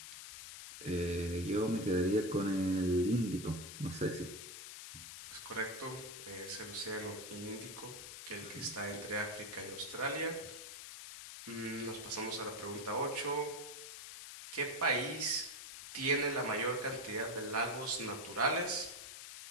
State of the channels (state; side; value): noise; left; hiss, 10 dB below the sound